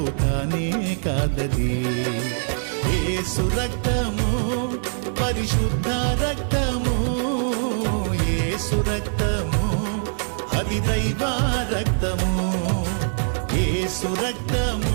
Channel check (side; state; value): left; silent; 63 dB below the other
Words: కానే కాదది. యేసు రక్తము పరిశుద్ధ రక్తము, యేసు రక్తము అది దైవ రక్తము, యేసు రక్తము